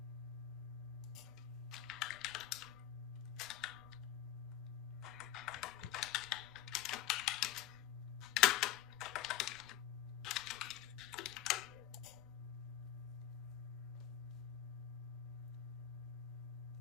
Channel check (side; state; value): right; quieter; 12.3 dB